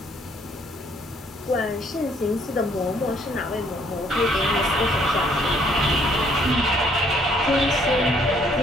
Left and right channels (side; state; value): both; normal; correlation 0.65